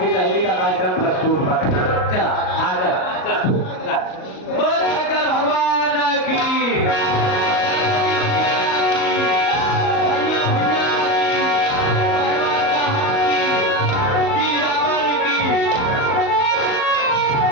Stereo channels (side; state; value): right; late; 38 ms